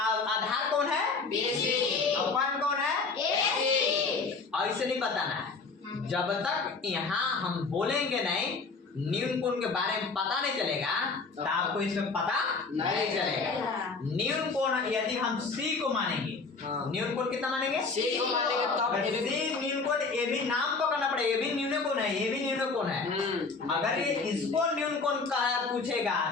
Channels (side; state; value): right; quieter; 4.3 dB